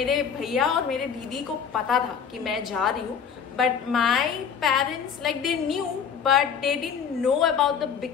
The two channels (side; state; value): right; quieter; 7.1 dB